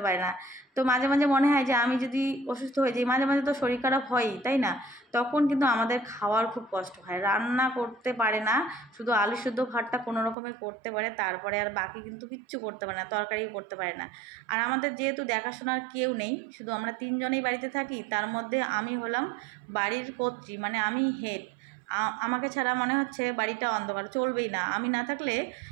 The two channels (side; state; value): left; drops out; at 10.4 s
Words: পারে না। তো মাঝে মাঝে মনে হয় যে আমি যদি অসুস্থ হয়ে যাই, মাঝে মাঝে তো শরীর খারাপ হয়ই, তাই না? তখন কিন্তু আমাদের খাওয়ার খুব কষ্ট হয়। রান্না করতে পারে না, শুধু আলু সিদ্ধ ভাতটা কোনো রকমে করতে পারে, তারপরে আর বাকি কিন্তু কিচ্ছু করতে পারে না, তরকারিও করতে পারে না। আর আমাদের যেহেতু দেখাশোনার কেউ নেই, শুধু আমরা 3জনেই বাড়িতে থাকি, তার মধ্যে আমি হলাম বাড়ির কর্ত্রী, মানে আমি হেড। আমাকে ছাড়া মনে হচ্ছে বাড়িটা অন্ধকার, চলবেই না। আমি না থাকলে